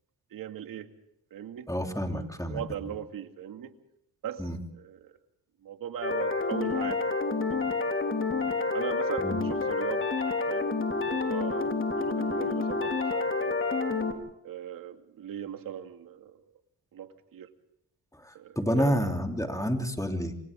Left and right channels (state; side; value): normal; both; correlation 0.24